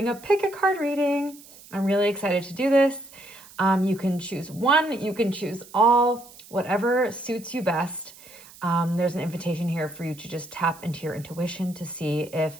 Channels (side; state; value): right; noise; hiss, 21 dB below the sound